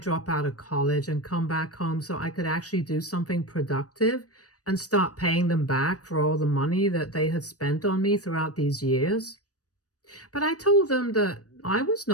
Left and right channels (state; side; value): late; right; 0.67 ms